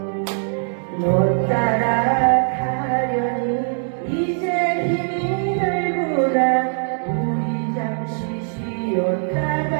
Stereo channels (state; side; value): silent; left; digital silence